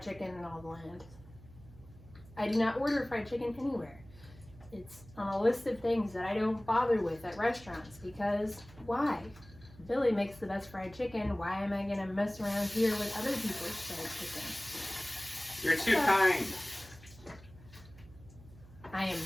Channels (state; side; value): noise; right; hum, 21 dB below the sound